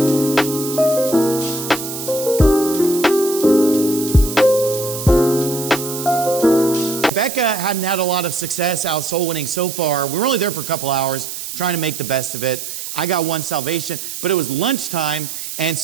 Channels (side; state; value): right; noise; hiss, 7 dB below the sound